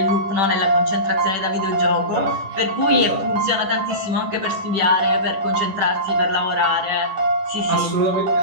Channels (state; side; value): late; left; 10 ms